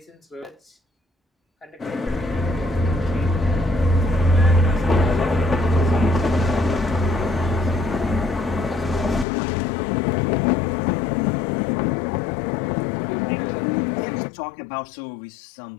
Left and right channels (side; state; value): right; drops out; at 9.2 s